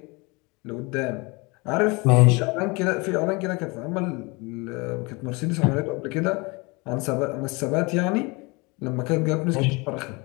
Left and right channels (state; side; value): quieter; right; 27.0 dB